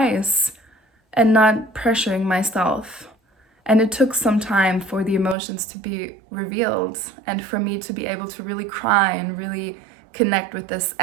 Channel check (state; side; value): drops out; left; at 5.4 s